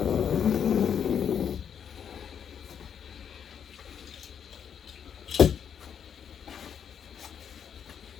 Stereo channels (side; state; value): right; quieter; 8.0 dB